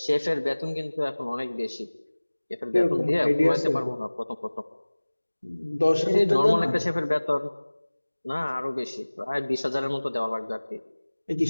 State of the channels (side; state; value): both; inverted; correlation -1.00